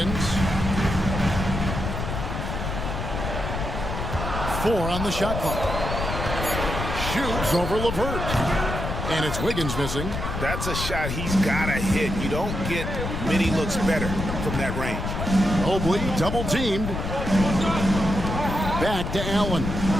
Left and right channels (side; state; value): left; noise; rumble, 4 dB below the sound